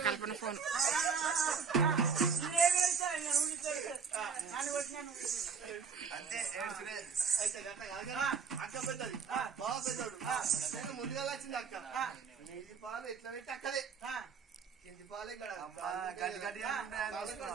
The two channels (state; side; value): quieter; left; 6.0 dB